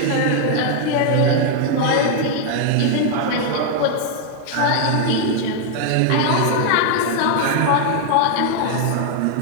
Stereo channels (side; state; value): both; different; correlation 0.00